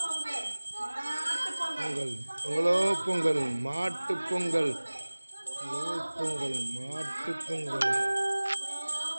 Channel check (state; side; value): inverted; both; correlation -1.00